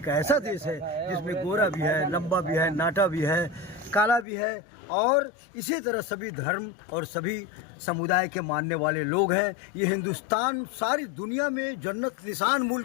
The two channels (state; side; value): drops out; right; at 4.2 s